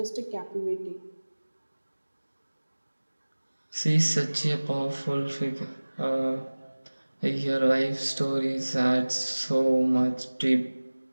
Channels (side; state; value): both; inverted; correlation -1.00